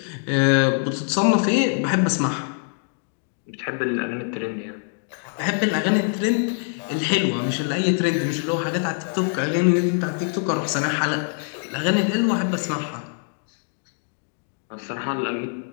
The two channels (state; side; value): silent; right; 57 dB below the other